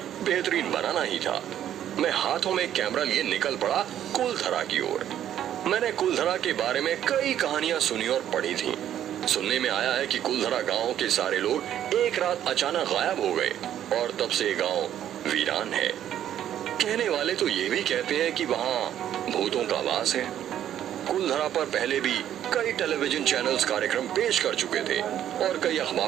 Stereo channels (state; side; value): quieter; left; 10.9 dB